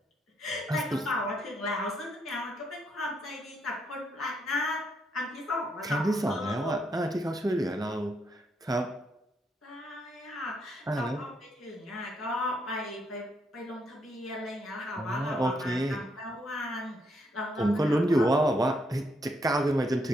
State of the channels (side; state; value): both; normal; correlation 0.75